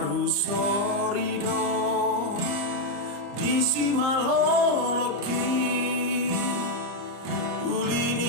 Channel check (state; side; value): late; left; 33 ms